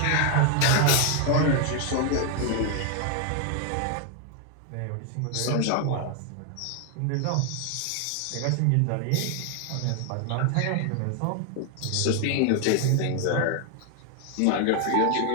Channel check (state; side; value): different; both; correlation 0.00